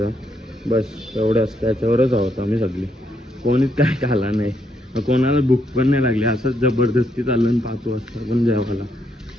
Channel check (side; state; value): both; normal; correlation 0.76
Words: बस एवढंच, त्याच्यावरच आहोत आम्ही सगळी. कोणीच काय खाला नाही, कोणाला भूक पण नाही लागली. असंच जबरदस्ती चाललं 5 वाजता पण जेवायला.